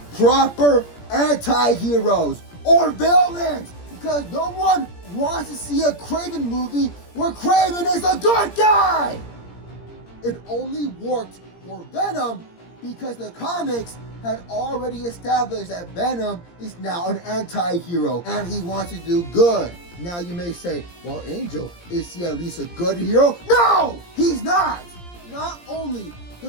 proper anti-heroes or villains? Because no one wants to see a Kraven movie where Kraven is a good guy! It only worked for Venom because the comics had already established that Venom is now an anti-hero and he wants to do good. Now you may say, well Angel, is he at least a good hero? No! He's not! Not only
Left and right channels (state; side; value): late; right; 17 ms